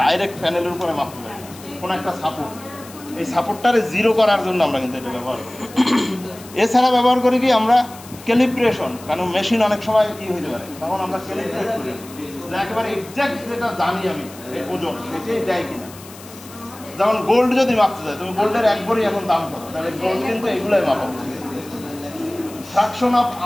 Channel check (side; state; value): left; noise; hiss, 19 dB below the sound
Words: ডাইরেক্ট প্যানেলের উপরে মাপতে পারি, কোনো একটা সাপোর্ট, এই সাপোর্টটারে জিরো করার জন্য আমরা কিন্তু এটা ব্যবহার করি। এছাড়া ব্যবহার করি কি আমরা ক্যালিব্রেশন, কারণ মেশিন অনেক সময় কি হইতে পারে, তখন আমরা ক্যালিব্রেট করি, একেবারে এক্সাক্ট যেটা জানি আমি এই ওজন সেটাই দেয় কিনা। যেমন গোল্ড যদি মাপতে যায়, তুমি গোল্ডের একবারই এখন দাম করো, তাহলে গোল্ড কিন্তু এগুলাই মাপা, ফ্র্যাকশন অফ